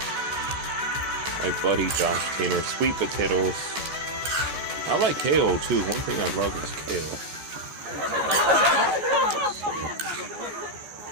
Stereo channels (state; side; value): late; left; 14 ms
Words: My buddy Josh Tainer. Sweet potatoes. I like kale too. One thing I love is kale.